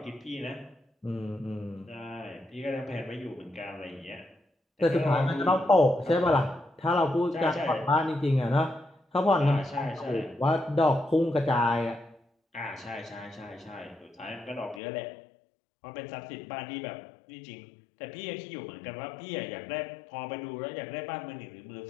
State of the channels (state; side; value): drops out; right; at 14.8 s